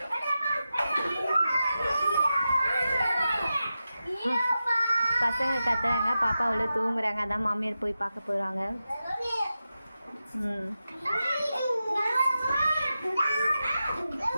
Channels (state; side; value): inverted; both; correlation -0.91